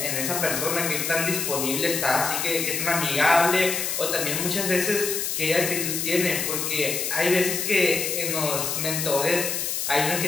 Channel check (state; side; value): noise; left; hiss, 1 dB below the sound